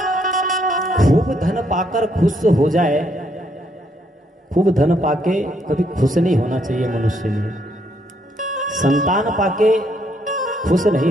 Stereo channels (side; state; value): both; normal; correlation 0.72